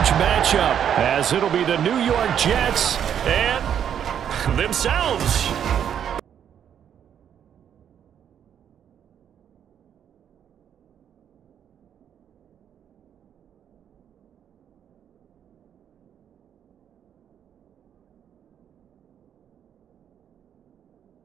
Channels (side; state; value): left; quieter; 9.0 dB